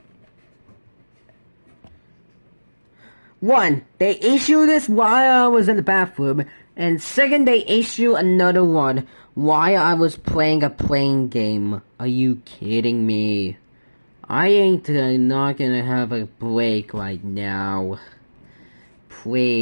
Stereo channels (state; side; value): inverted; both; correlation -1.00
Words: One, they issued this while I was in the bathroom, and second, they issue another one while I was playing a playing game. Are you kidding me? I ain't not gonna have a break right now.